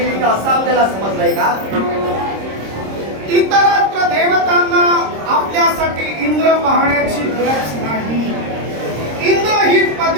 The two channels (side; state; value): left; late; 26 ms